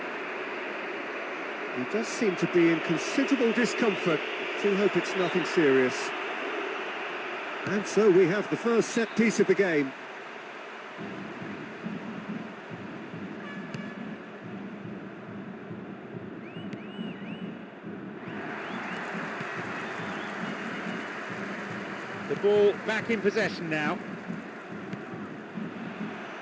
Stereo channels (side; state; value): both; identical; correlation 1.00